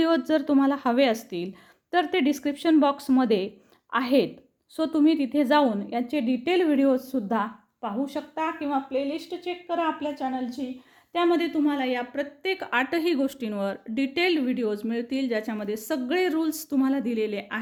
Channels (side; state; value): both; identical; correlation 1.00